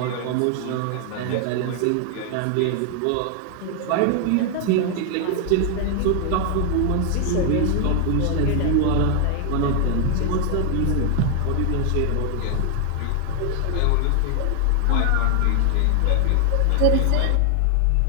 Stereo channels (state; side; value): different; both; correlation 0.00